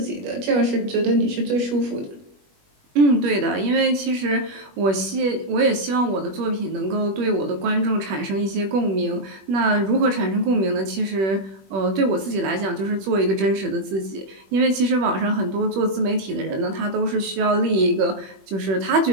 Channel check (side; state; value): left; late; 21 ms